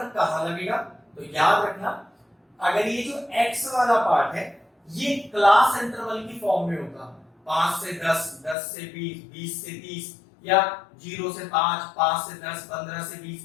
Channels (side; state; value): right; drops out; at 8.6 s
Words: कहां लगेगा, तो याद रखना, अगर ये जो x वाला पार्ट है ये क्लास इंटरवल की फॉर्म में होगा, 5 से 10, 10 से 20, 20 से 30, या 0 से 5, 5 से 10, 15 से